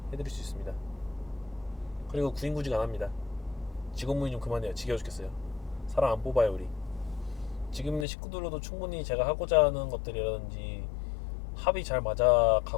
해드릴 수 있습니다. 그리고 구인구직 안 합니다. 직원문의 좀 그만해요. 지겨워 죽겠어요. 사람 안 뽑아요 우리. 지금 있는 식구들로도 충분히 제가 하고자 하는 것들이라든지 합이 잘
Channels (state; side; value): drops out; right; at 8.1 s